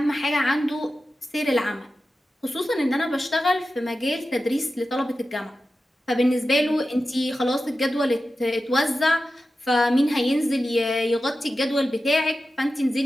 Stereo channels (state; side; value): normal; both; correlation 0.93